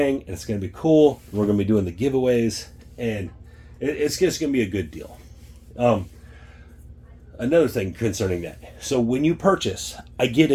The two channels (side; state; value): both; identical; correlation 1.00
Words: and it's going to be cool. We're going to be doing the giveaways, and it's just going to be a good deal. Another thing concerning that. So when you purchase, I get